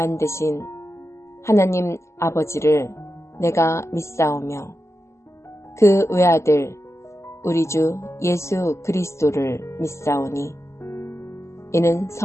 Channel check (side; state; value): right; late; 0.13 ms